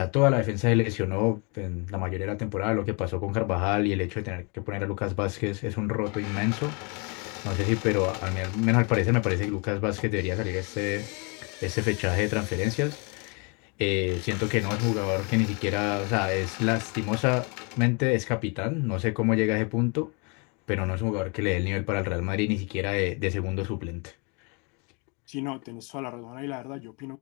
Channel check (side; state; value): right; quieter; 33.0 dB